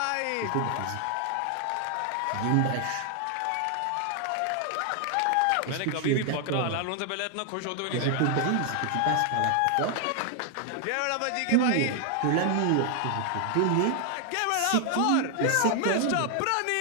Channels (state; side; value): different; both; correlation 0.00